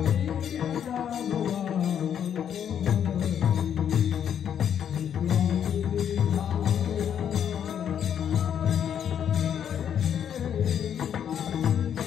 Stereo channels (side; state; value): right; quieter; 8.9 dB